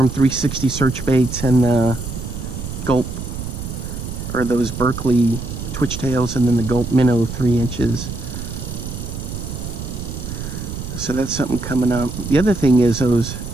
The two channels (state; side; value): noise; right; rumble, 7 dB below the sound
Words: 360 search baits and the Gulp, or those Berkley Twitchtails, and then the Gulp Minnow 3 inches. So that's something coming up. The other thing is those